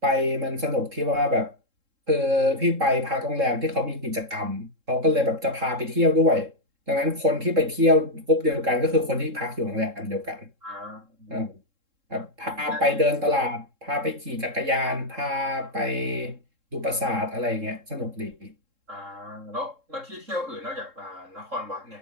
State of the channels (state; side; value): late; left; 3.7 ms